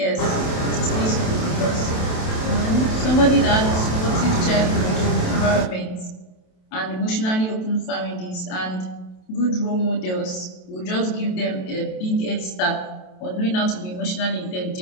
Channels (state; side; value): late; right; 27 ms